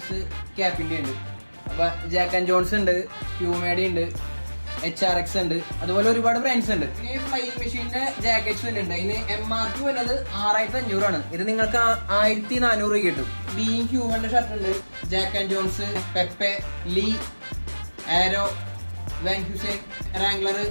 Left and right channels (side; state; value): both; inverted; correlation -1.00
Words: ക്യാപ്പിന്റെ ഉണ്ട്. അപ്പൊ ജാക്ക് ആൻഡ് ജോൺസ് ഉണ്ട്, പ്യൂമേഡി ഉണ്ട്, HRX ഉണ്ട്, അതുപോലെ ഒരുപാട് ബ്രാൻഡ്സ് ഉണ്ട്. ഇനി ഫ്ലൈയിങ് മെഷീന്റെ ജാക്കറ്റ്സ് ഉണ്ട്. ഇതിന് MRP വരുന്നത് 6500 ഇത് നിങ്ങൾക്ക് 1400 കിട്ടും. ബീങ് ഹ്യൂമന്റെ ഷർട്ട് ഉണ്ട്, Jack and Jones, Pepe, Lee, Arrow, Van Heusen, Wrangler,